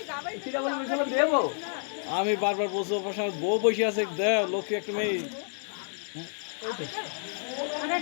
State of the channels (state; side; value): silent; right; digital silence